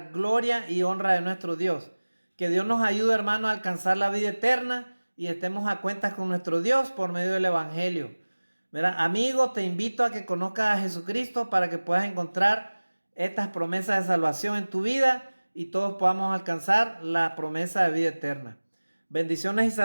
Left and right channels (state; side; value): inverted; both; correlation -1.00